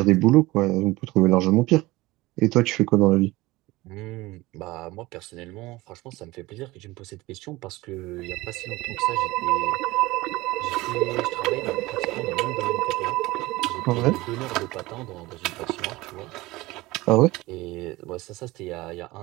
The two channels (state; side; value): quieter; left; 19.9 dB